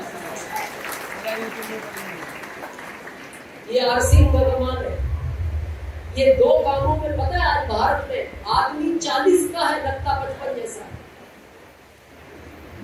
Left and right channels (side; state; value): both; identical; correlation 1.00